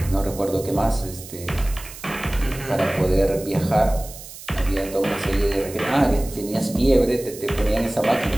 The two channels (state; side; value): noise; right; hiss, 15 dB below the sound